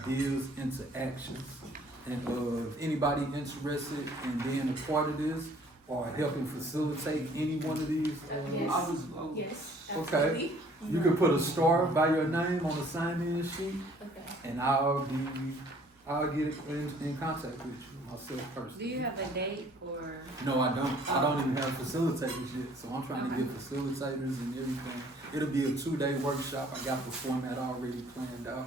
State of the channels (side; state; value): both; normal; correlation 0.57